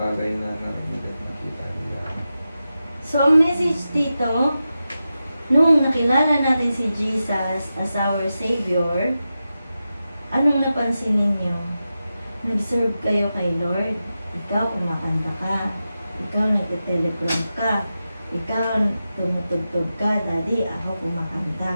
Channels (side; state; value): both; inverted; correlation -0.91